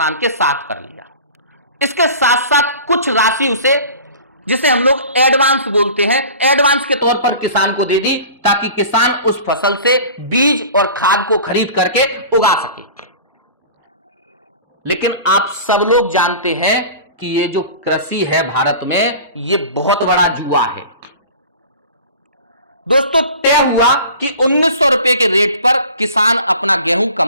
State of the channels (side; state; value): both; inverted; correlation -0.40